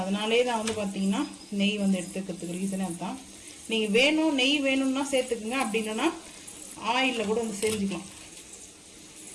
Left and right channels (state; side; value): identical; both; correlation 1.00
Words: அதனாலே தான் வந்து பார்த்தீங்கன்னா நெய் வந்து எடுத்துக்கிறதுக்கு ரீசனே அதுதான். நீங்கள் வேணும் நெய் வேணும்னா சேர்த்துக்குங்க, அப்படி இல்லைன்னா ஆயிலில் கூட வந்து செஞ்சுக்கலாம்.